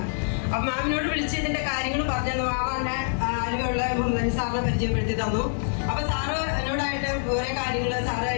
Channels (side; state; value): right; silent; 59 dB below the other